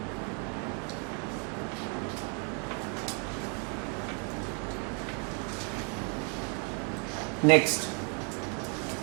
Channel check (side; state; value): left; quieter; 38.4 dB